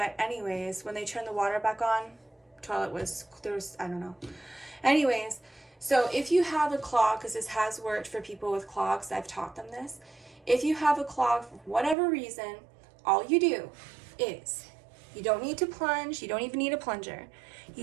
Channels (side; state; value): left; drops out; at 12.0 s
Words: anyways, when they turned the water back on, I don't know. Anyways, so if you have a clog, because this has worked for people with clogs, I've taught them this. If you have a clog for whatever reason, all you do is, you don't need to plunge, you don't even need a plunger.